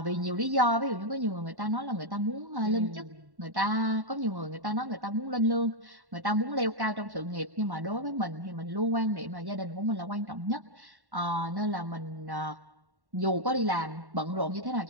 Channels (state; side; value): late; left; 1.1 ms